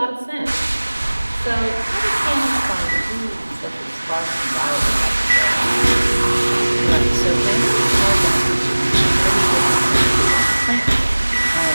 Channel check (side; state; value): both; inverted; correlation -1.00